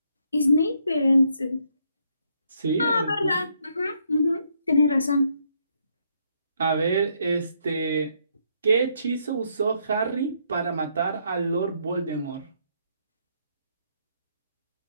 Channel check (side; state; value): both; inverted; correlation -0.73